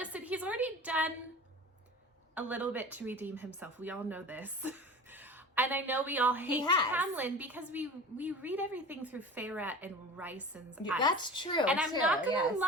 he's already done a little bit to redeem himself. We all know this. And I know we all hate Tamlin because we read everything through Feyre and Ryson's eyes. That's true. And I'm not going to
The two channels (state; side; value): normal; both; correlation 0.35